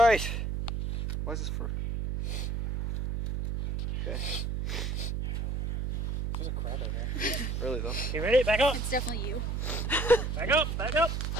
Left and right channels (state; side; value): noise; right; hum, 1 dB below the sound